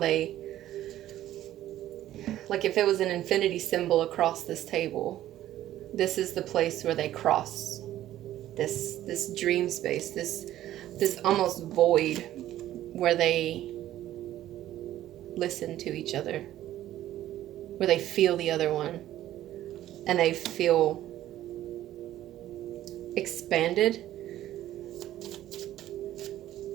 like if it was an infinity symbol across this table, this is the place where they cross this dream space, this almost void where they listen to each other, where they feel the other one, and they feel expanded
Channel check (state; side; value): quieter; left; 13.3 dB